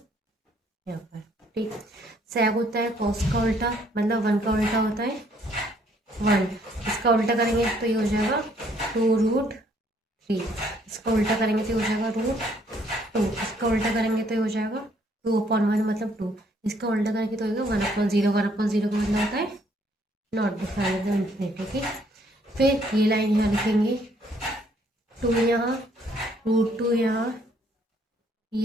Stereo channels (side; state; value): both; normal; correlation 0.65